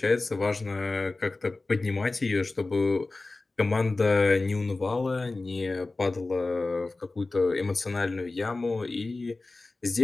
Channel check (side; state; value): right; quieter; 3.3 dB